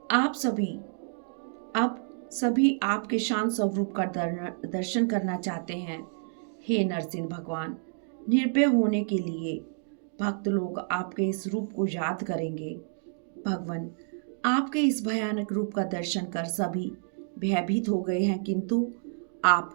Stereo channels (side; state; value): left; silent; digital silence